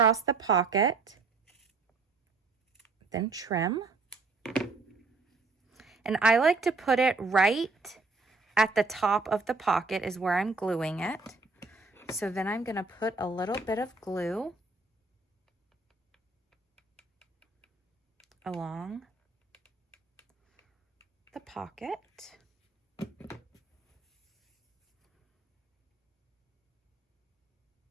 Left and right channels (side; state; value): left; quieter; 3.9 dB